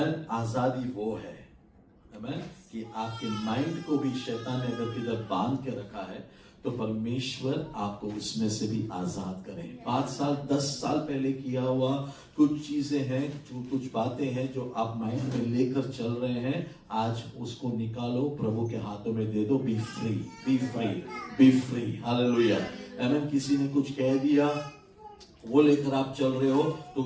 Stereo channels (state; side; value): identical; both; correlation 1.00